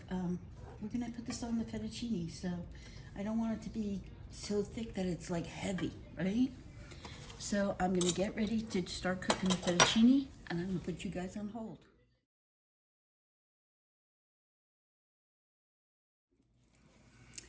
we're gonna put this on the fettuccine, so I don't want it to be so thick that it's like heavy, right? So I'm gonna get ready to start cooking the fettuccine, and I'm gonna put you guys on hold.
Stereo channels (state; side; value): identical; both; correlation 1.00